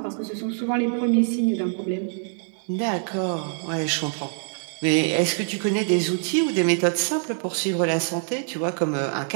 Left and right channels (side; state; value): left; silent; digital silence